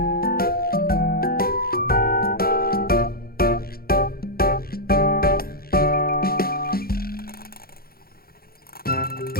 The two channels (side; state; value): right; late; 0.44 ms